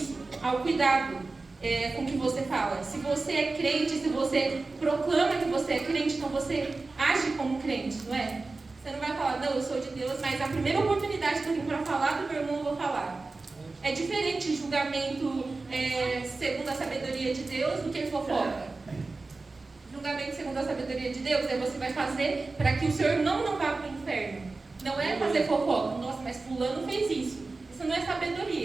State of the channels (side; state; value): left; quieter; 3.6 dB